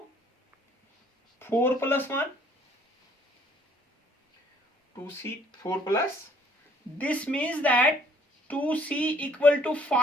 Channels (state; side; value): normal; both; correlation 0.61